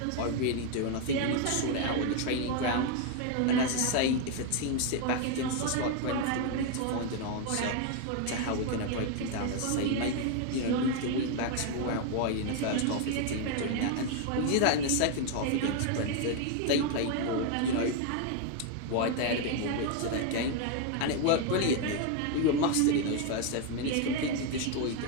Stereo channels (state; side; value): different; both; correlation 0.01